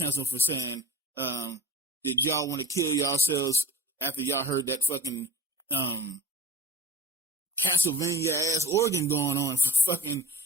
for saying, did y'all want to kill yourselves after y'all heard that fucking Castlevania ass organ going on for fucking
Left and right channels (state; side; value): normal; both; correlation 0.35